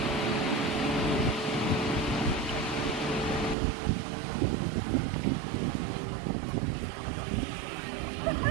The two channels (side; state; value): left; drops out; at 3.6 s